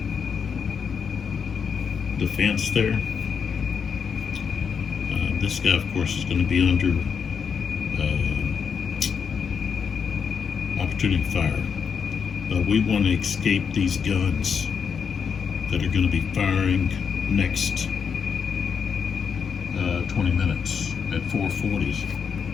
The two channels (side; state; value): right; quieter; 6.5 dB